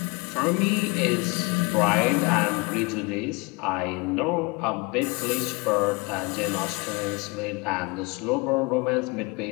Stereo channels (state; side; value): quieter; right; 27.1 dB